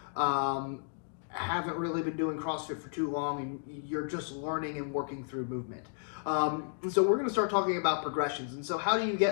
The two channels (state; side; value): silent; right; digital silence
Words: haven't really been doing CrossFit for too long, and you're just learning and working through movement. And so we're going to start talking about progressions. And so how do you